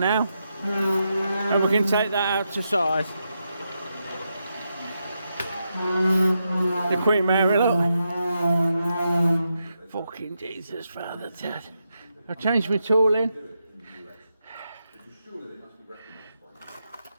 and we can take that out to size. The Queen Mary, look. Fucking Jesus, Father Dad. I'll change my tool in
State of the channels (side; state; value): both; inverted; correlation -0.85